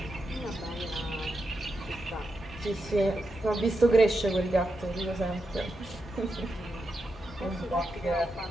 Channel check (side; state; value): both; normal; correlation 0.86